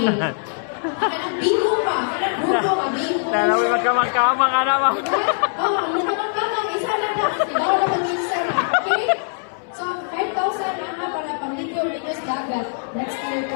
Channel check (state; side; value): silent; right; 59 dB below the other